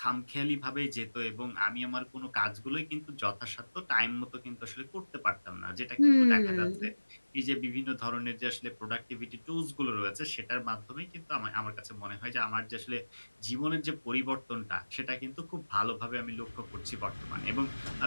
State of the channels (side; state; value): both; inverted; correlation -1.00